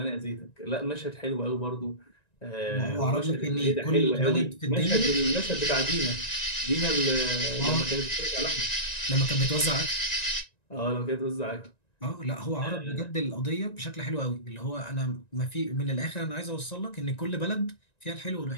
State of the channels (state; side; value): late; right; 1.9 ms